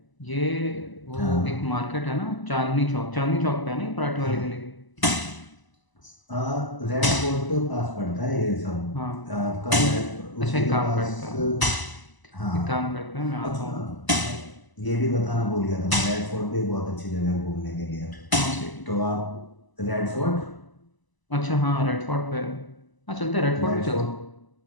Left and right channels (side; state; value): right; late; 1.0 ms